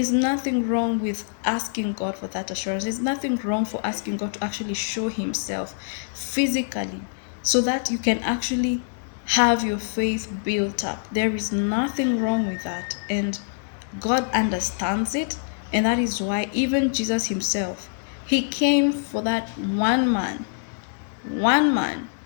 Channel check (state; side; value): silent; right; digital silence